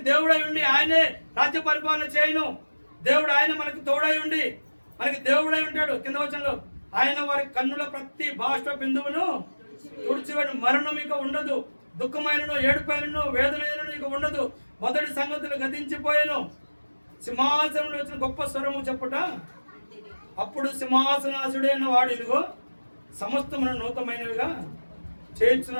దేవుడై ఉండి ఆయనే రాజ్య పరిపాలన చేయను. దేవుడు ఆయన మనకి తోడై ఉండి మనకి దేవుడై ఉంటాడు. కింద వచనంలో ఆయన వారి కన్నుల ప్రతి బాష్ప బిందువును తుడిచివేడు, మరణం ఇక ఉండదు, దుఃఖమైనను ఏడుపైనను వేదనైనను ఇక ఉండదు, మొదటి సంగతులు గతించిపోయాను. సింహాసనంలో వచ్చిన గొప్ప స్వరము చెప్పుట, అప్పుడు సింహాసనాసుడైన వాడు ఇదిగో సమస్తమును నూతనమైనవిగా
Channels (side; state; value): both; inverted; correlation -1.00